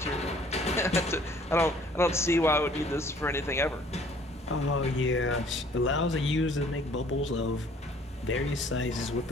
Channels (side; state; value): both; normal; correlation 0.56